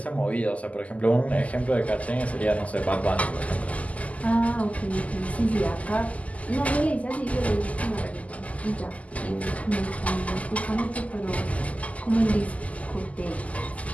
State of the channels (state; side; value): late; right; 0.071 ms